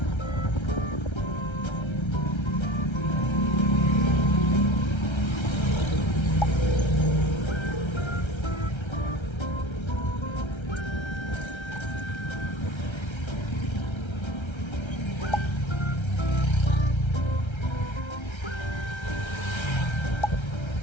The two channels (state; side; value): late; right; 1.3 ms